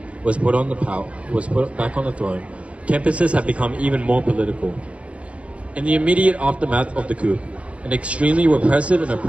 was put back on the throne, campuses have become even more political. In the immediate aftermath of the coup, an extremely repressive and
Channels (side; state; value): left; late; 0.063 ms